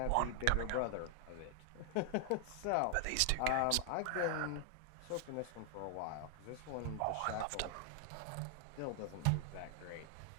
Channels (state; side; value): different; both; correlation 0.00